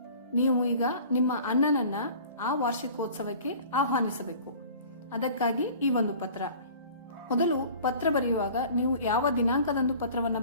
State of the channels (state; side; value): inverted; both; correlation -0.45